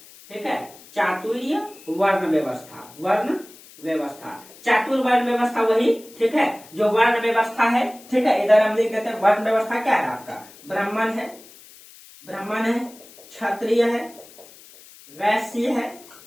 ठीक है, चातुर्य वर्ण व्यवस्था, वर्ण व्यवस्था, चातुर्वर्ण व्यवस्था वही। ठीक है, जो वर्ण व्यवस्था है। ठीक है, इधर हम लिख देते हैं वर्ण व्यवस्था क्या है आपका, ब्राह्मण है, ब्राह्मण है, क्षत्रिय है, वैश्य है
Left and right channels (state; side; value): noise; left; hiss, 22 dB below the sound